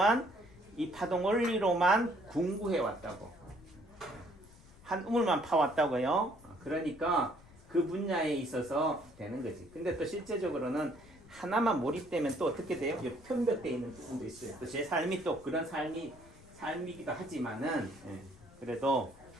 이 파동 원리로만 공부해 왔다고. 한 우물만 파왔다고요. 그러니까 그 분야에 있어서 되는 거지. 근데 또 실제적으로는 하나만 몰입되면 또 어떻게 돼요? 편벽되어 있는 부분도 있어요. 또 제 삶이 또 그런 삶이기도 하지만은 그래도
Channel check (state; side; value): noise; left; rumble, 23 dB below the sound